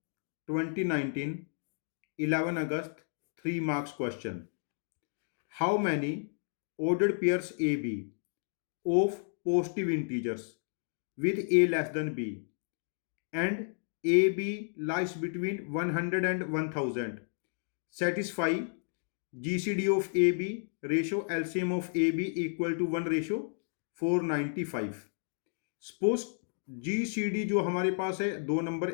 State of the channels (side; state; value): right; silent; digital silence